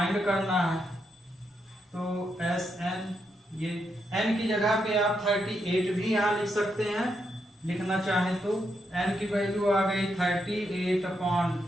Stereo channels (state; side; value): normal; both; correlation 0.81